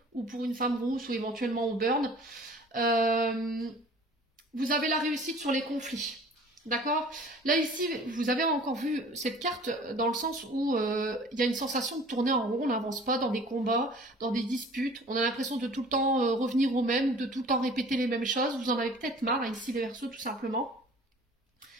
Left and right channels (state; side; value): normal; both; correlation 0.47